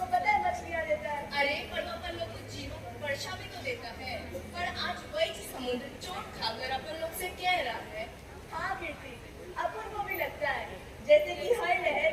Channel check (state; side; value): identical; both; correlation 1.00